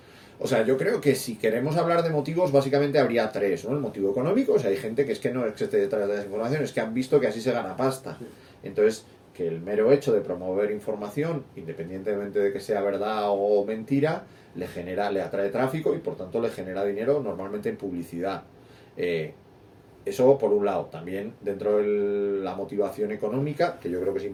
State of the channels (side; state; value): both; identical; correlation 1.00